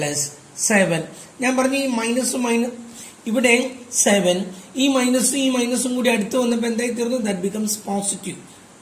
ഞാൻ പറഞ്ഞു ഈ മൈനസും ഇവിടെ 7, ഈ മൈനസും കൂടി അടുത്ത് വന്നപ്പോൾ എന്തായി തീർന്നു? That becomes positive.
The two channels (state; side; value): identical; both; correlation 1.00